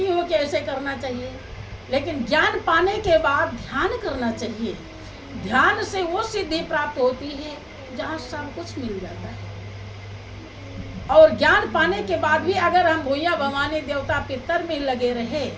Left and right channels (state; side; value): identical; both; correlation 1.00